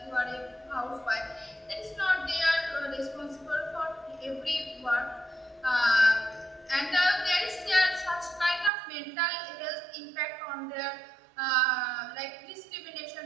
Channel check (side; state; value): left; drops out; at 8.7 s